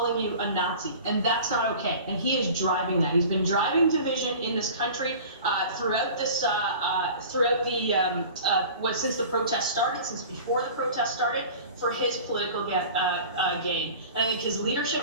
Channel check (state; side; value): inverted; both; correlation -0.40